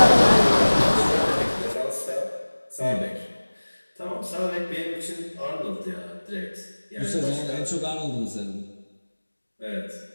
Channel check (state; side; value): inverted; both; correlation -1.00